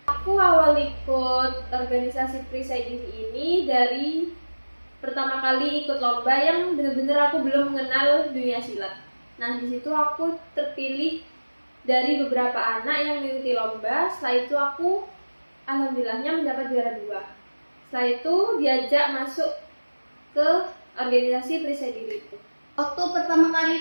Aku awal ikut organisasi perisai diri ini dari pertama kali ikut lomba yang benar-benar aku belum mengenal dunia silat. Nah, di situ aku terpilih dari beberapa anak yang mengikuti lomba. Setelah itu aku alhamdulillahnya mendapat juara 2. Setelah itu diajak masuk ke organisasi perisai diri itu. Waktu pertama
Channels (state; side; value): inverted; both; correlation -1.00